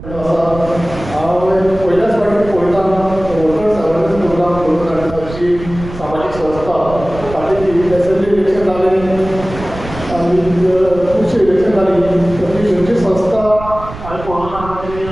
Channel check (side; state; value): right; noise; rumble, 12 dB below the sound